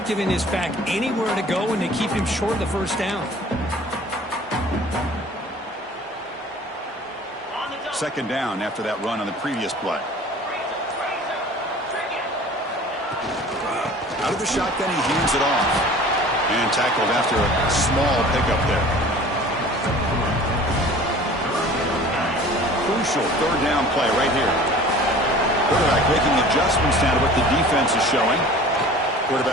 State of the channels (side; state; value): both; normal; correlation 0.45